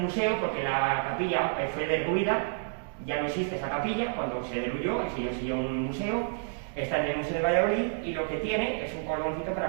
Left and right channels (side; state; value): left; silent; digital silence